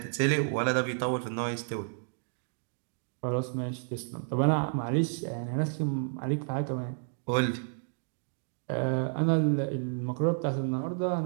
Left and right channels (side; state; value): left; silent; digital silence